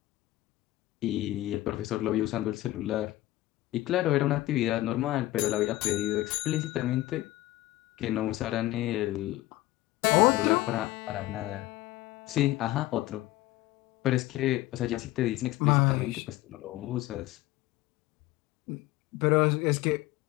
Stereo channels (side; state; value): right; quieter; 16.8 dB